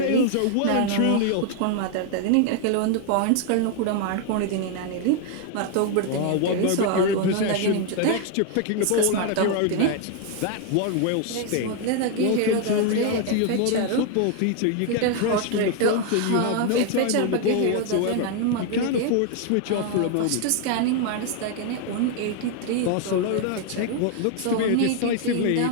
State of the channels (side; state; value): both; different; correlation 0.00